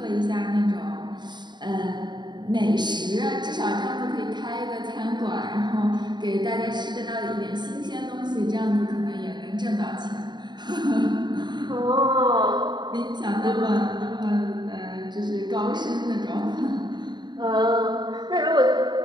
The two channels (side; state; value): left; late; 0.21 ms